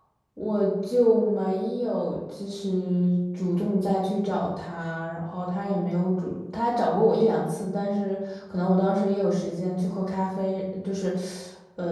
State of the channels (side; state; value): both; identical; correlation 1.00